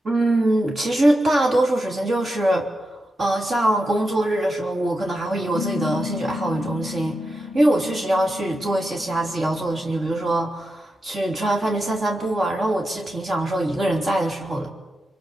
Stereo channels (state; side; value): normal; both; correlation 0.88